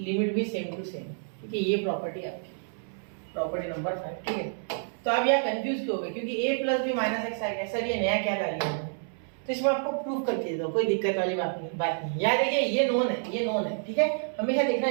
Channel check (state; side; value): silent; left; 59 dB below the other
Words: भी सेम टू सेम, ठीक है। ये प्रॉपर्टी आपकी प्रॉपर्टी नंबर 5, ठीक है। तो आप यहाँ कंफ्यूज क्यों हो गए, क्योंकि a plus b minus x आ गया, सर ये नया क्या कर लिया, तो इसमें आपको प्रूफ करके देता हूँ, कोई दिक्कत वाली बात नहीं। याद रखिए ये नोन है, ये नोन है, ठीक है। हमेशा देखना